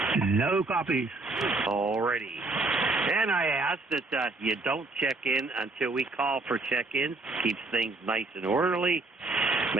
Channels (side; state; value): left; quieter; 3.2 dB